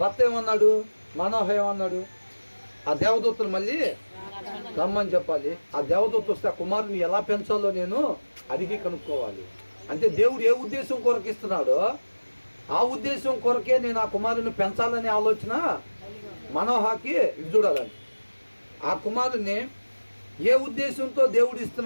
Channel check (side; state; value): both; inverted; correlation -1.00